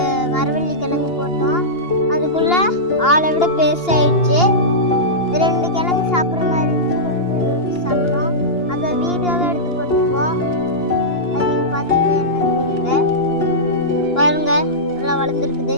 மரவள்ளி கிழங்கு போட்டோம். அதுக்குள்ளே ஆளை விட பெருசாகிடுச்சு. 2 கிழங்கு சாப்பிட்ற மாதிரி இருந்துச்சு, கொஞ்சம் யோசிச்சு சாப்பிட்டோம். அதை வீடியோவே எடுத்து போட்டுருக்கோம். அது நீங்கள் பார்த்தீங்கன்னா என்னன்னு தெரியல. பாருங்க, நல்லா வளர்ந்துருக்குது.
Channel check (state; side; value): late; right; 2.8 ms